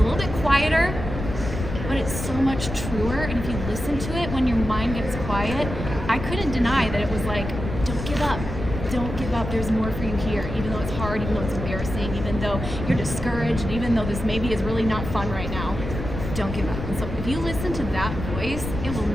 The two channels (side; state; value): left; noise; rumble, 6 dB below the sound